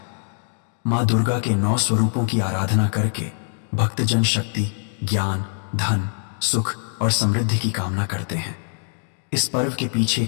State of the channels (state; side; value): silent; right; digital silence